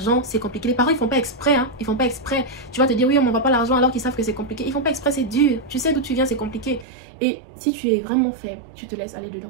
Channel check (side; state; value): left; drops out; at 6.9 s